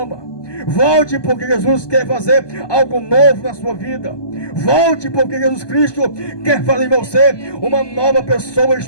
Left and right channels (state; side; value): late; right; 1.2 ms